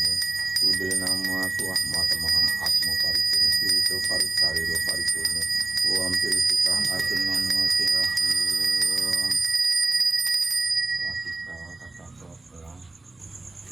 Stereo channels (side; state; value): left; quieter; 3.2 dB